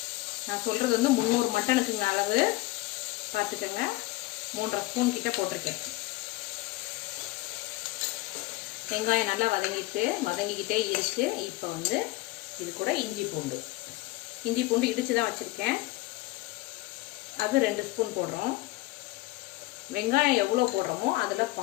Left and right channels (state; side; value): quieter; right; 20.0 dB